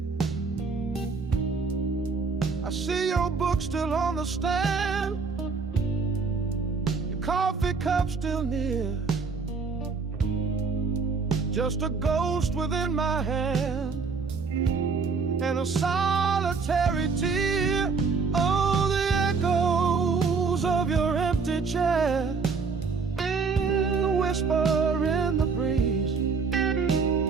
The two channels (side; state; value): left; quieter; 4.9 dB